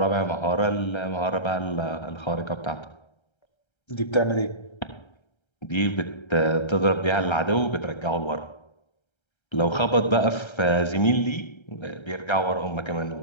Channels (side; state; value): right; late; 1.3 ms